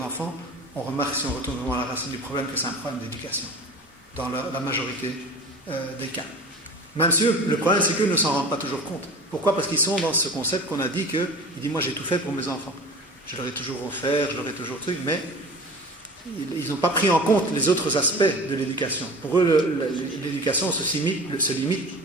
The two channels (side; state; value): both; normal; correlation 0.37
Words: enfants, on remarque, si on retourne vraiment à la racine du problème, que c'est un problème d'éducation, dans la majorité des cas. Même si le problème, c'est qu'eux ne s'en rendent pas toujours compte. Pourquoi? Parce qu'ils sont dans ce concept qu'on a dit que, il dit, moi j'ai tout fait pour mes enfants. Je leur ai toujours offert, je leur ai toujours truc, mais ils n'ont pas pris en compte les autres aspects de l'éducation. Pour eux, l'éducation se limite